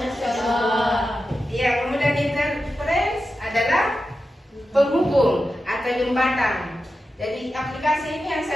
Allah. Ya, kemudian Interface adalah penghubung atau jembatan. Jadi aplikasi ini yang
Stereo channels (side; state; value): both; normal; correlation 0.91